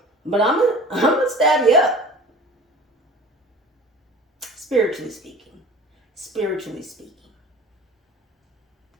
but I'm gonna stab you up. Spiritually speaking. Spiritually speaking.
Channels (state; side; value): normal; both; correlation 0.42